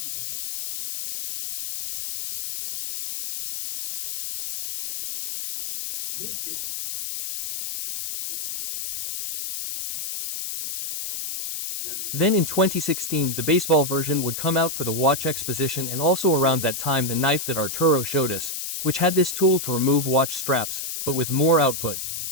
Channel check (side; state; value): left; noise; hiss, 6 dB below the sound